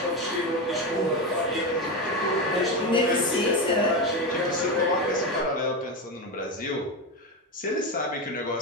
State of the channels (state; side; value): normal; both; correlation 0.15